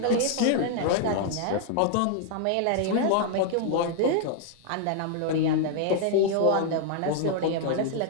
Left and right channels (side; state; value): both; different; correlation 0.00